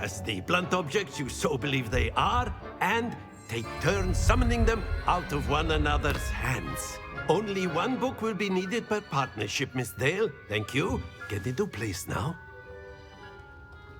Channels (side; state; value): both; identical; correlation 1.00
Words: the blunt objects you so believe they are, and take turns summoning them out of one another's hands. Only one book will be needed per partnership, Miss Dale. Thank you. Get into place now.